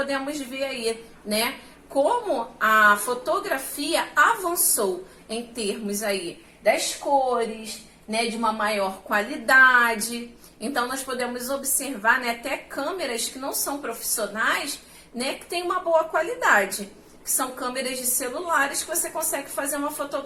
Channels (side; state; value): both; identical; correlation 1.00